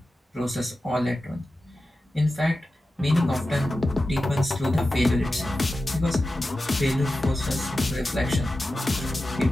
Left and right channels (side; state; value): both; normal; correlation 0.93